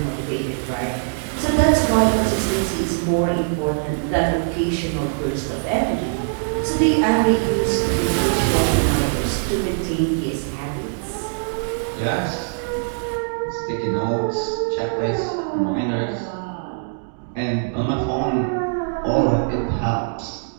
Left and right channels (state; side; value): silent; left; digital silence